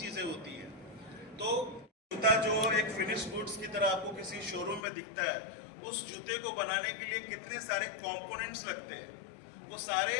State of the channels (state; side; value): drops out; right; at 4.8 s